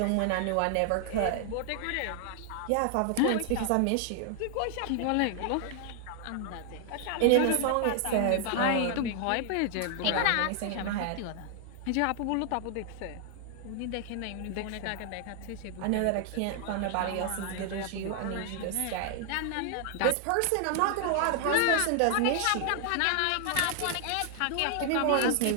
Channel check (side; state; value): both; different; correlation 0.00